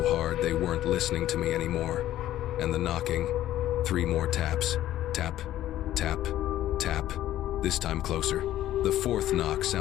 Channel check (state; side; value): quieter; right; 13.3 dB